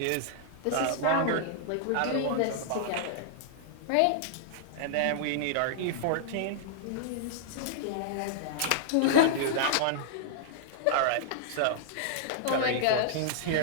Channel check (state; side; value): different; both; correlation -0.02